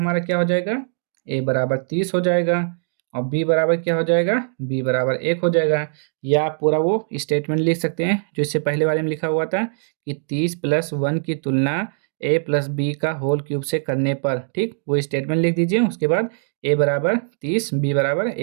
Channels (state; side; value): silent; left; digital silence